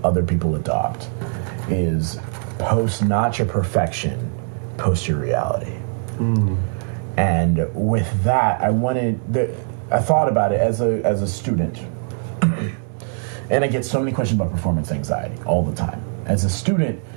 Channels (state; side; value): silent; left; 65 dB below the other